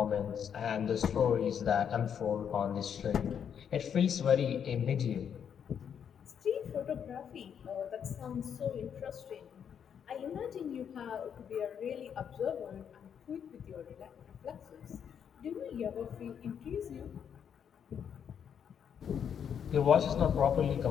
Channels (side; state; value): right; quieter; 8.0 dB